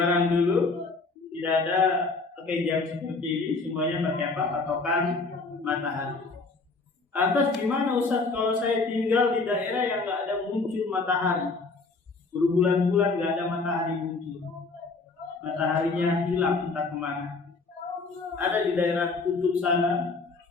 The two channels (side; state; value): right; quieter; 3.9 dB